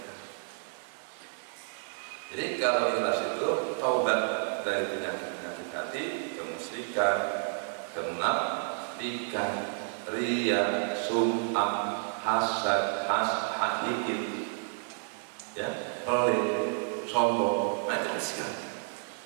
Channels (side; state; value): left; silent; digital silence